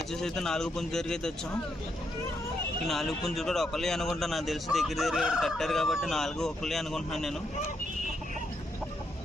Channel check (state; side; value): normal; both; correlation 0.79